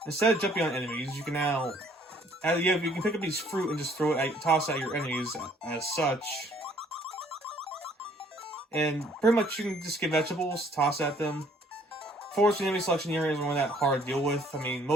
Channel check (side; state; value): both; normal; correlation 0.60